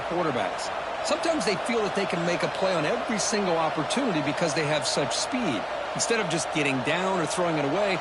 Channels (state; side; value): identical; both; correlation 1.00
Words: quarterbacks. Sometimes they feel that they can make a play on every single opportunity because they have such speed. Instead of just getting down or throwing it away,